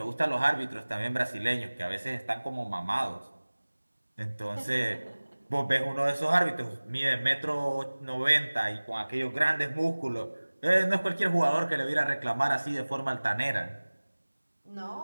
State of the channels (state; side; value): inverted; both; correlation -1.00